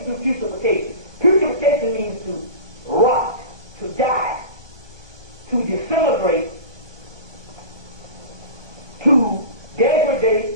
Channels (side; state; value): left; late; 1.2 ms